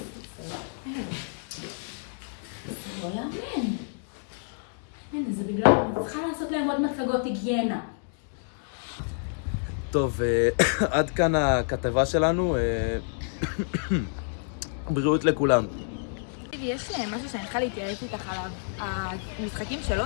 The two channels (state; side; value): silent; right; digital silence